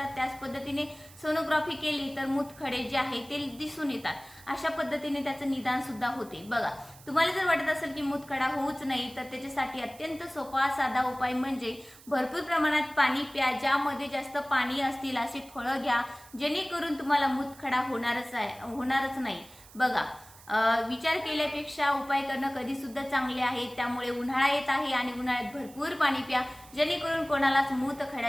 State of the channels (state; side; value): noise; right; hiss, 22 dB below the sound